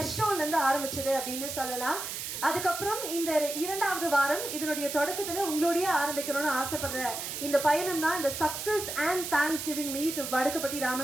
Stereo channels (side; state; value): right; noise; hiss, 6 dB below the sound